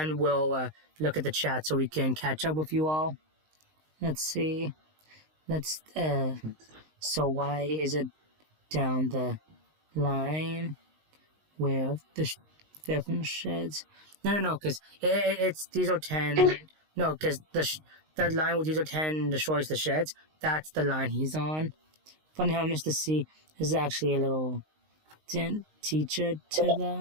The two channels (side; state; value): left; late; 19 ms